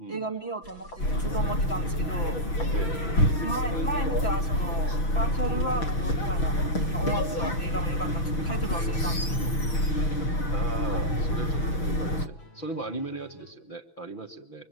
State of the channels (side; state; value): right; late; 6.0 ms